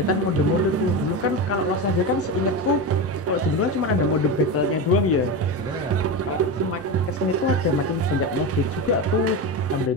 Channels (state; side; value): normal; both; correlation 0.19